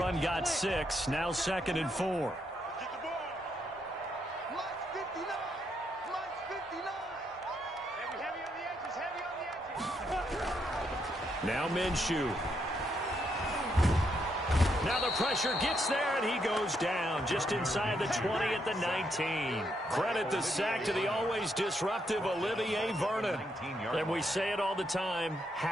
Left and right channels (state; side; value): normal; both; correlation 0.77